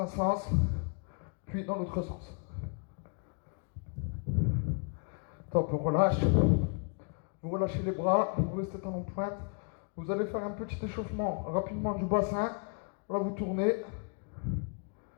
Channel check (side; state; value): right; quieter; 39.1 dB